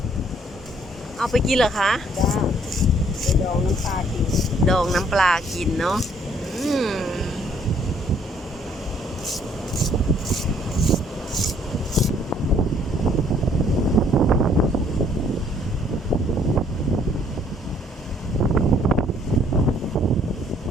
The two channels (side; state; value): both; normal; correlation 0.63